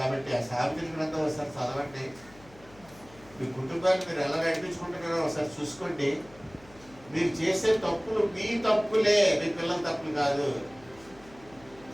ఆ సామెతల గ్రంథం ఒకసారి చదవండి. మీ కుటుంబాన్ని మీరు ఎలా నడిపించుకుంటున్నారో ఒకసారి చూసుకోండి. మీరు చేసే తప్పులు మీ తప్పులే, మీ పిల్లల తప్పులు కాదు.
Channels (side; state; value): left; noise; hum, 24 dB below the sound